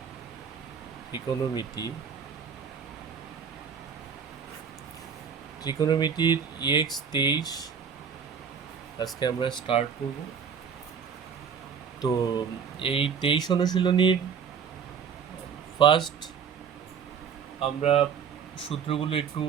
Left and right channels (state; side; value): quieter; left; 6.9 dB